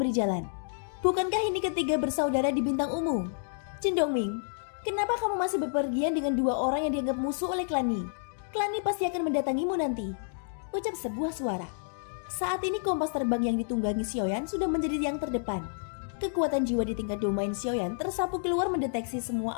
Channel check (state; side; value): silent; right; digital silence